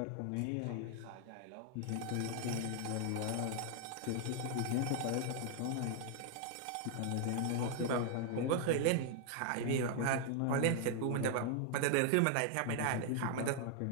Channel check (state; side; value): different; both; correlation 0.00